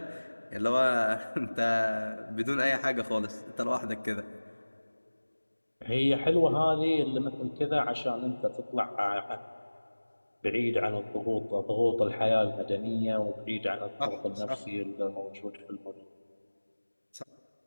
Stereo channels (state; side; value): inverted; both; correlation -1.00